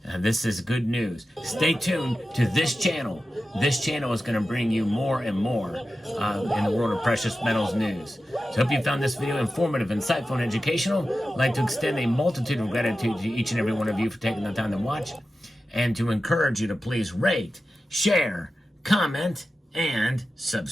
This is good news. Stay tuned to this channel. This channel is going to bring you more and more in the world of precious metals news. So hope you found this video informative, insightful, and educational. I'd like to extend a multitude of gratitude to each and every one of you for taking the time to watch, and to encourage you to please rate, share, comment, and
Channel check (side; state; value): both; normal; correlation 0.93